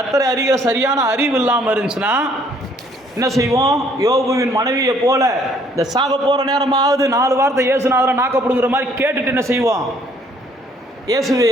அறிகிற சரியான அறிவு இல்லாமல் இருந்துச்சுன்னா என்ன செய்வோம், யோபுவின் மனைவியை போல இந்த சாக போகிற நேரமாவது 4 வார்த்தை இயேசுநாதரை நாக்கப்படுங்கிற மாதிரி கேட்டுட்டு என்ன செய்வோம், இயேசுவே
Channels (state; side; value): normal; both; correlation 0.63